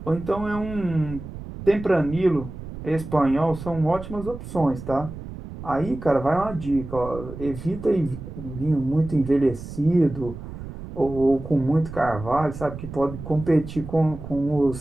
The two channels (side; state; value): right; noise; rumble, 11 dB below the sound